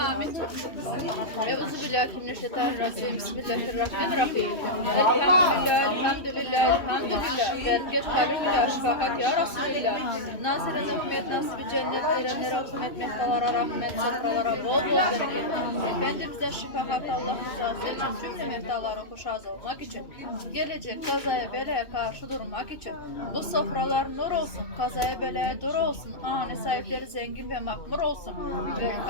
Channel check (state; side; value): late; right; 2.6 ms